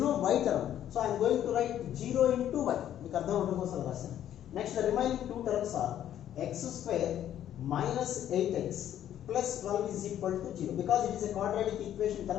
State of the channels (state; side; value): quieter; right; 11.0 dB